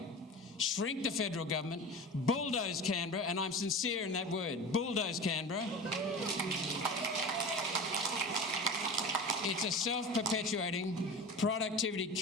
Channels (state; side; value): normal; both; correlation 0.32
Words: Shrink the federal government, bulldoze Canberra, and I'm sincere in that word, bulldoze Canberra. It's a self-perpetuating,